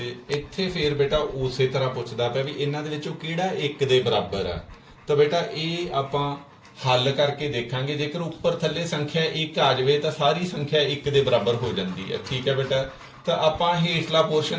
ਇੱਥੇ ਫੇਰ ਬੇਟਾ ਉਸੇ ਤਰ੍ਹਾਂ ਪੁੱਛਦਾ ਪਿਆ ਵੀ ਇਹਨਾਂ ਦੇ ਵਿੱਚੋਂ ਕਿਹੜਾ 1 ਦੇ ਬਰਾਬਰ ਆ। ਤਾਂ ਬੇਟਾ ਇਹ ਆਪਾਂ ਹੱਲ ਕਰਕੇ ਦੇਖਾਂਗੇ। ਜੇਕਰ ਉੱਪਰ ਥੱਲੇ ਸੰਖਿਆ 1 ਆ ਜਾਵੇ ਤਾਂ ਸਾਰੀ ਸੰਖਿਆ 1 ਦੇ ਬਰਾਬਰ ਹੋ ਜਾਂਦੀ ਹੈ। ਠੀਕ ਹੈ ਬੇਟਾ। ਤਾਂ ਆਪਾਂ ਹੇਠਲਾ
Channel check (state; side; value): identical; both; correlation 1.00